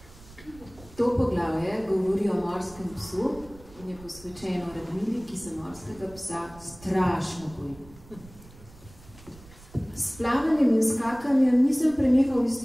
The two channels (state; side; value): noise; right; rumble, 22 dB below the sound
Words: To poglavje govori o morskem psu in je posvečeno Radmili, ki se morskega psa strašno boji. S plavanjem in skakanjem nisem prenehal iz